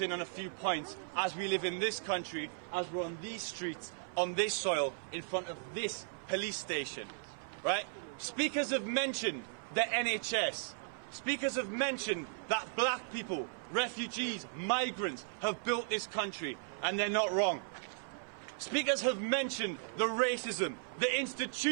on a few points as we live in this country, as we're on these streets, on this soil, in front of this police station. Right? Speakers have mentioned the NHS. Speakers have mentioned that black people, refugees, migrants have built this country, and they're not wrong. Speakers have mentioned the racism, the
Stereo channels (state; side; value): silent; left; 54 dB below the other